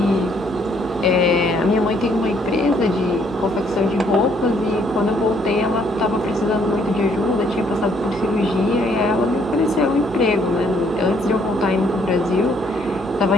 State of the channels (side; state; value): both; normal; correlation 0.67